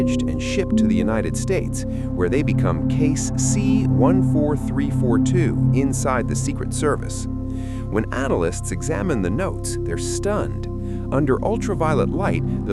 and shipped to the United States, where they become Case C14342 inside the Secret Service. When analysts examine the notes, they're stunned. Under ultraviolet light,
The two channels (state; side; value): identical; both; correlation 1.00